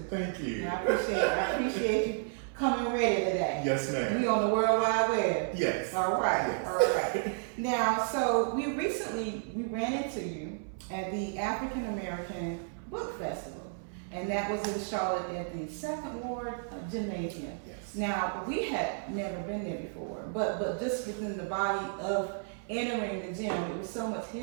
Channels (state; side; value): silent; left; 56 dB below the other